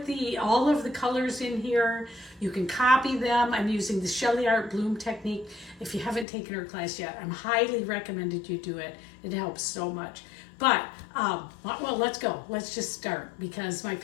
all of the colors in here. You can copy them. I'm using the SheleeArt bloom technique. If you haven't taken her class yet, I'm highly recommended you do it. It helps so much. But, well, let's go. Let's just start because my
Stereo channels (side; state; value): right; drops out; at 6.2 s